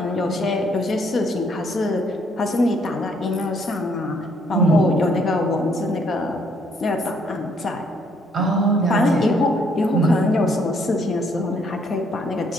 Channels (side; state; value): both; normal; correlation 0.68